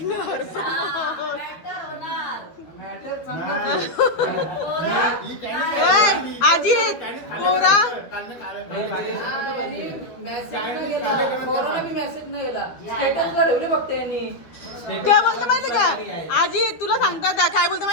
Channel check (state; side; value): late; right; 13 ms